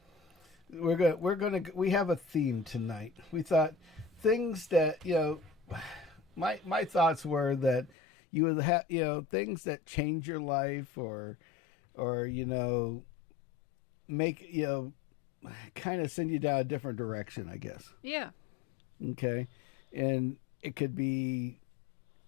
We have a theme tonight. We thought things that my thoughts were that you would have things that change your life or make kind of send you down a different direction, I guess. Yeah. Okay, and it could be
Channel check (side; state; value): right; drops out; at 7.9 s